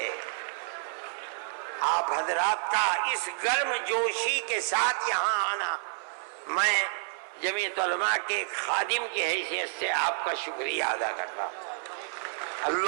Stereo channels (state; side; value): silent; left; 58 dB below the other